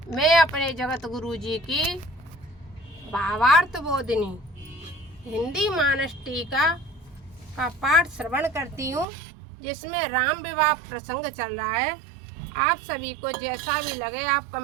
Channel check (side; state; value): left; drops out; at 9.1 s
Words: मैं अपने जगत गुरु जी की भावार्थ बोधिनी हिंदी मानस टीका का पाठ श्रवण करती हूँ, जिसमें राम विवाह प्रसंग चल रहा है। आप सभी को जैसा भी लगे आप